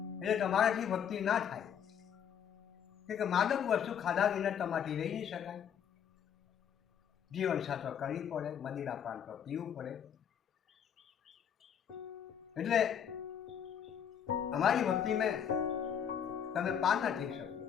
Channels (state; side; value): quieter; right; 8.5 dB